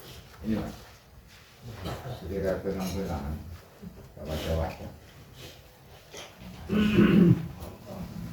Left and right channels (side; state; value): both; identical; correlation 1.00